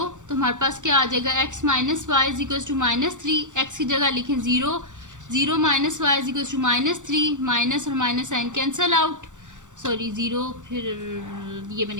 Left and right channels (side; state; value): left; late; 0.85 ms